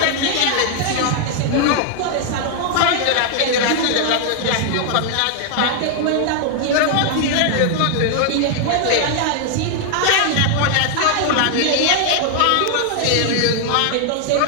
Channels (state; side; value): different; both; correlation 0.00